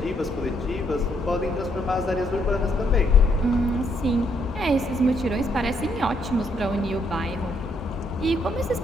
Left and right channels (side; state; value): both; normal; correlation 0.73